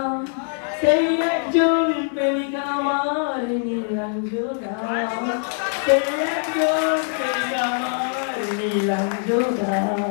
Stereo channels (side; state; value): right; silent; 57 dB below the other